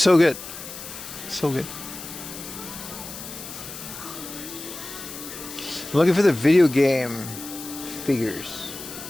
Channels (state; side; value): noise; left; hiss, 11 dB below the sound